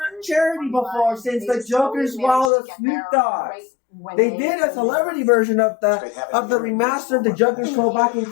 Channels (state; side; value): drops out; right; at 2.5 s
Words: charity before since the Joker's Wild of Snoop Dogg. They did a celebrity version of the remastered The Joker's Show back in